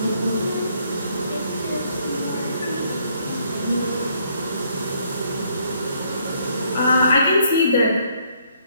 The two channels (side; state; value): both; inverted; correlation -0.68